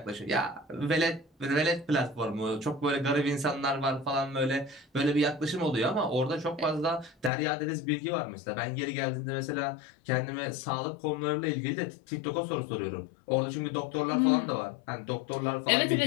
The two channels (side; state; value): right; drops out; at 7.3 s